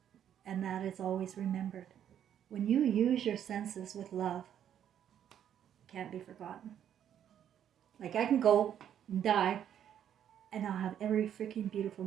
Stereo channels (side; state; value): left; quieter; 9.7 dB